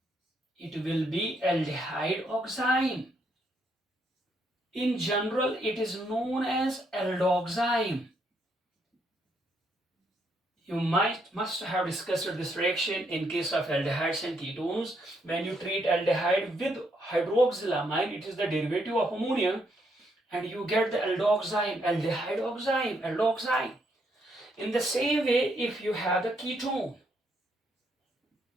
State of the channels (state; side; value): normal; both; correlation 0.74